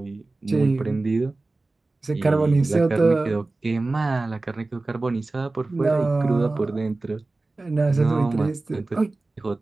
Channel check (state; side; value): quieter; left; 3.2 dB